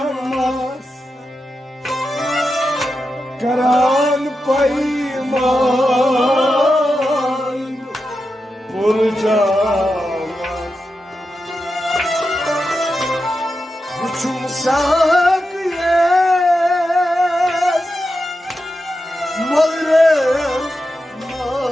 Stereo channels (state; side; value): normal; both; correlation 0.89